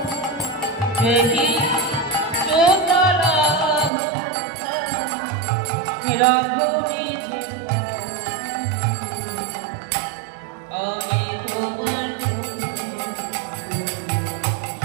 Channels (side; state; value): left; drops out; at 3.9 s